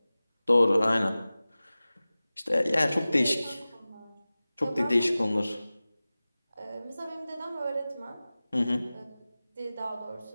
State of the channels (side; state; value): both; inverted; correlation -0.97